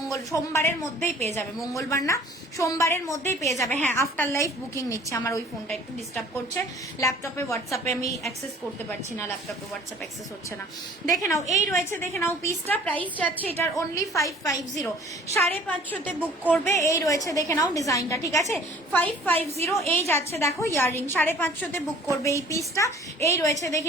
সোমবারের মধ্যেই পেয়ে যাবে, মঙ্গলবার না, সোমবারের মধ্যেই পেয়ে যাবে। হ্যাঁ আফটার লাইফ বুকিং নিচ্ছে, আমার ওই ফোনটা একটু ডিস্টার্ব করছে, ল্যাপটপে হোয়াটসঅ্যাপে আমি অ্যাক্সেস করতে পারছি না, ল্যাপটপে হোয়াটসঅ্যাপ অ্যাক্সেস হচ্ছে না। দেখে নাও এই রয়েছে, দেখে নাও পিসটা, প্রাইস যাচ্ছে এটার অনলি 550, 550তে বুক করবে। এই রয়েছে দেখে নাও ডিজাইনটা, ঠিক আছে? 550 এই যাচ্ছে, দেখো ইয়াররিং, 550তে বুক করবে এই পিসটা। এই রয়েছে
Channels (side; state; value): both; normal; correlation 0.50